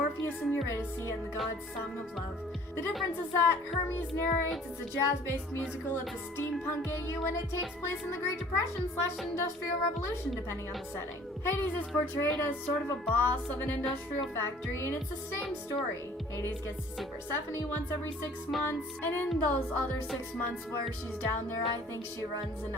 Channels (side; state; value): both; normal; correlation 0.52